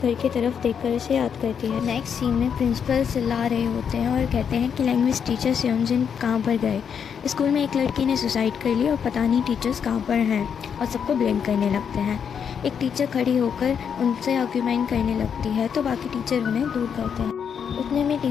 की तरफ देखकर उसे याद करती है। नेक्स्ट सीन में प्रिंसिपल चिल्ला रहे होते हैं और कहते हैं कि लैंग्वेज टीचर सेयोंजिन कहाँ पर गए। स्कूल में एक लड़की ने सुसाइड कर ली और पता नहीं टीचर्स कहाँ पर हैं, और सबको ब्लेम करने लगते हैं। एक टीचर खड़ी होकर उनसे आर्ग्यूमेंट करने लगती है तो बाकी टीचर उन्हें दूर करते हैं। उतने में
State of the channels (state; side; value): quieter; right; 7.4 dB